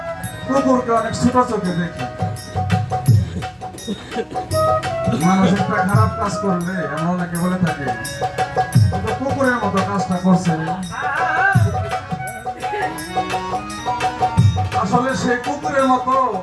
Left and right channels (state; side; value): identical; both; correlation 1.00